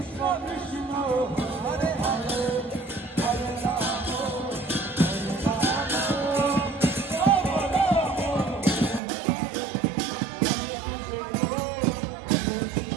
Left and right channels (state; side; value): drops out; left; at 9.0 s